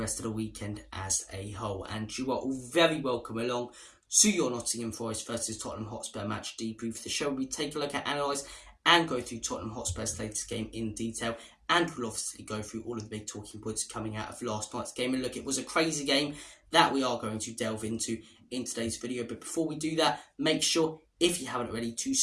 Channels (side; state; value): both; identical; correlation 1.00